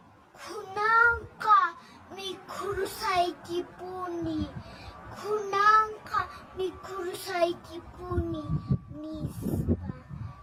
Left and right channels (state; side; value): identical; both; correlation 1.00